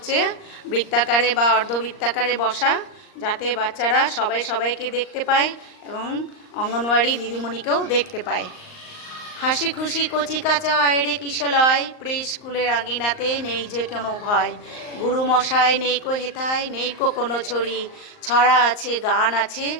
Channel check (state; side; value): late; right; 38 ms